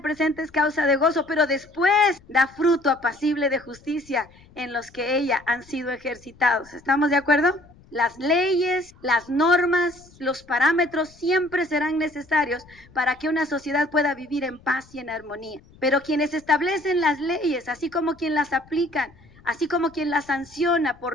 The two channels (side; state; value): left; noise; rumble, 26 dB below the sound